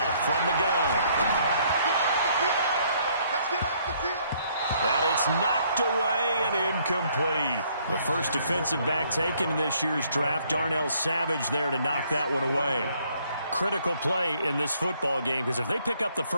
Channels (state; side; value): inverted; both; correlation -0.66